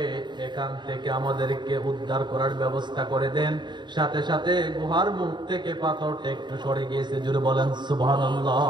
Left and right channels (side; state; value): left; late; 0.22 ms